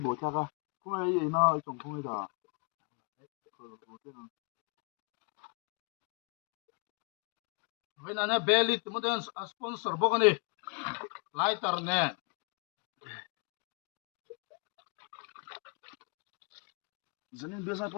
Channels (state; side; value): quieter; right; 34.7 dB